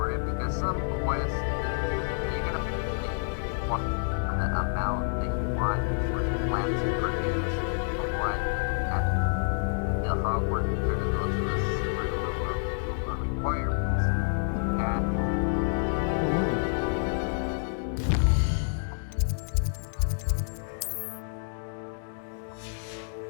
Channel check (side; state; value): right; silent; digital silence